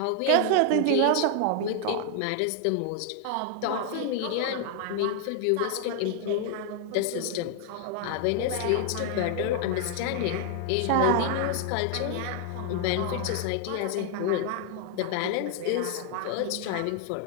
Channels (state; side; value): different; both; correlation 0.00